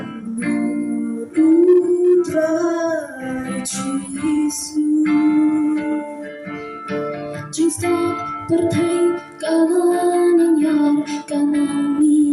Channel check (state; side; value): identical; both; correlation 1.00